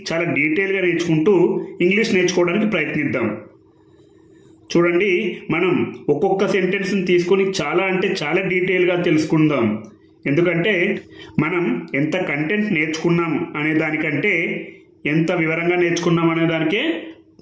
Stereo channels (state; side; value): identical; both; correlation 1.00